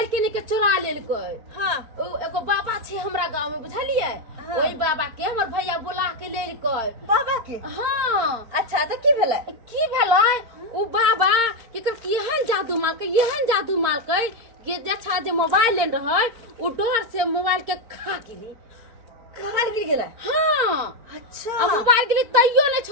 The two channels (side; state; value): left; late; 4.4 ms